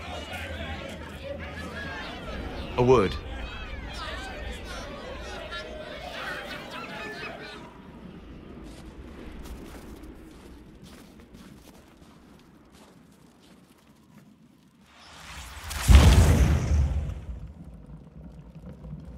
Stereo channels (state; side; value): identical; both; correlation 1.00